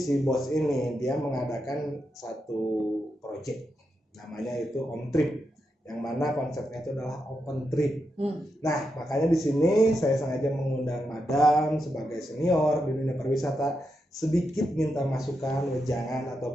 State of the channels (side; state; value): both; normal; correlation 0.85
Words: bos ini dia mengadakan satu project, namanya itu Om Trip, yang mana konsepnya itu adalah open trip. Nah, makanya di sini saya sengaja mengundang Madam sebagai senior di dunia pariwisata, sedikit minta masukan, wejangan